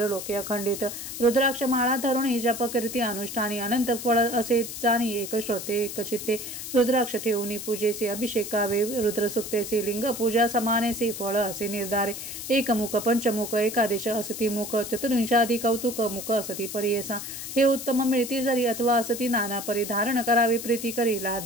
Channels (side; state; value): left; noise; hiss, 8 dB below the sound